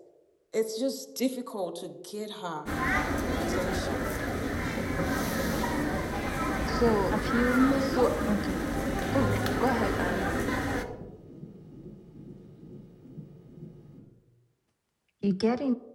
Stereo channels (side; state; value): both; identical; correlation 1.00